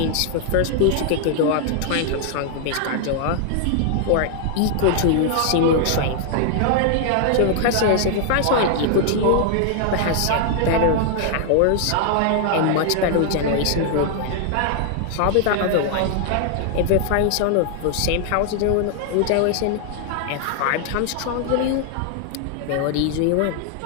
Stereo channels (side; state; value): both; different; correlation 0.00